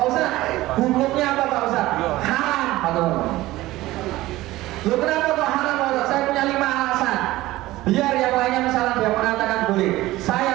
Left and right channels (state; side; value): quieter; left; 17.4 dB